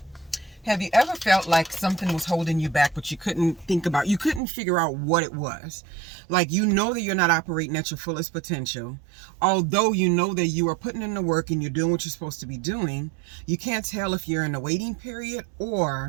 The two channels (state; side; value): drops out; left; at 4.4 s